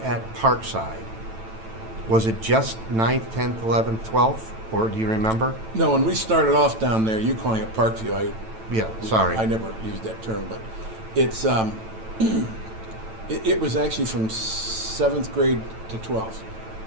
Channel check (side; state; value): left; late; 9.0 ms